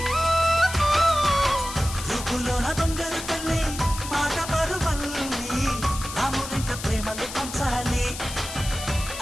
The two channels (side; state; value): left; noise; hiss, 9 dB below the sound